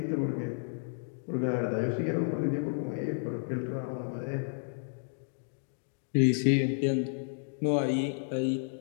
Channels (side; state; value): right; silent; digital silence